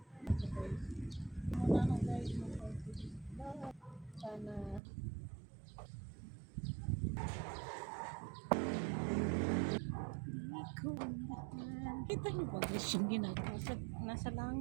Muna na guys, sana kita niyo ba guys yung ginagawa? Nasa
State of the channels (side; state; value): left; drops out; at 4.8 s